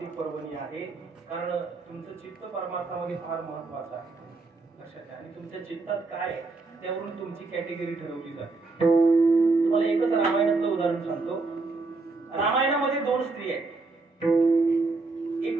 पर्वणी आहे. कारण तुमचं चित्त परमार्थामध्ये फार महत्वाचं आहे. लक्षात घ्या. आणि तुमच्या चित्तात काय आहे, त्यावरून तुमची कॅटेगरी ठरवली जाते. तुम्हाला एकच रामायणातलं उदाहरण सांगतो. रामायणामध्ये दोन स्त्री आहेत.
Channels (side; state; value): left; quieter; 3.6 dB